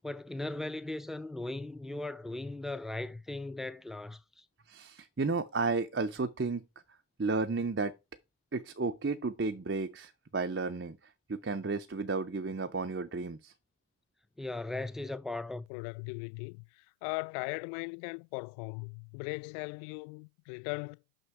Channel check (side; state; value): right; drops out; at 15.7 s